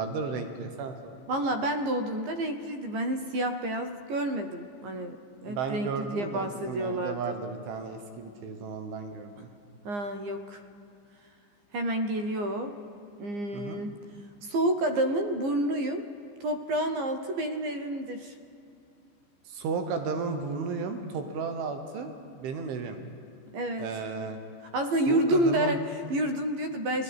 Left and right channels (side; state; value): left; late; 15 ms